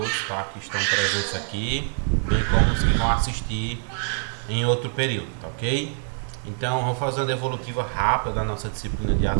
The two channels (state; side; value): silent; left; digital silence